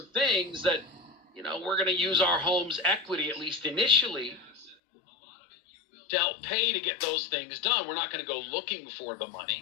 things that, we're going to use our home's equity, at least initially, to help pay to get those things done. We're not going to go looking for the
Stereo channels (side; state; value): right; drops out; at 4.8 s